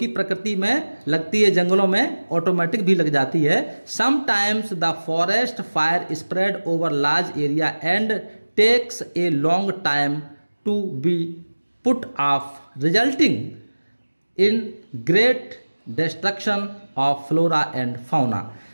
प्रकृति में लगती है, जंगलों में ऑटोमेटिक भी लग जाती है। Sometimes the forest fire spread over large area and takes a long time to be put off, resulting in great destruction of flora and fauna.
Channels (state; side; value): inverted; both; correlation -1.00